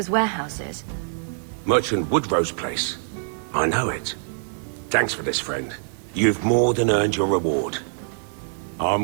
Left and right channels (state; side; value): silent; left; 60 dB below the other